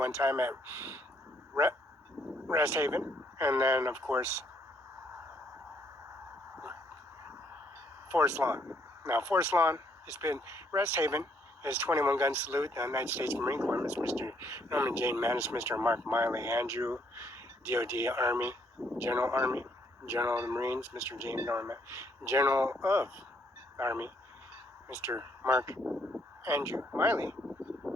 time at Rest Haven, and then of course Forest Lawn. Now Forest Lawn has been Rest Haven is 21 gun salute, the United States Marine Corps, Mr. Norman Jane Manis, Mr. Mark Miley, Andrew, DOD Army, General of the Marines, Mr. James Norman, General of the Army, Mr. Mark Andrew Miley,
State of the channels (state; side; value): normal; both; correlation 0.69